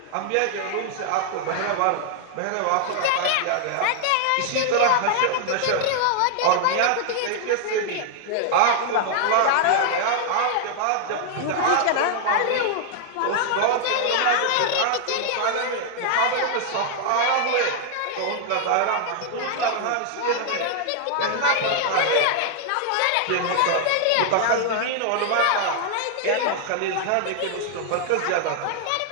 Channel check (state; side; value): different; both; correlation 0.00